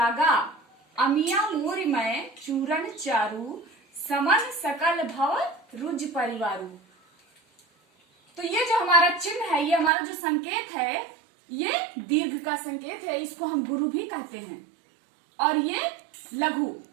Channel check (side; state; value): left; drops out; at 9.9 s